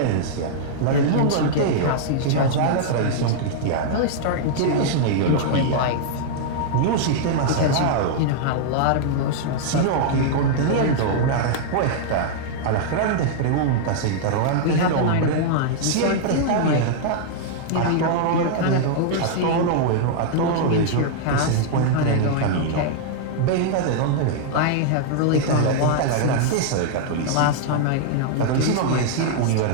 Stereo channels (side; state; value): both; different; correlation -0.01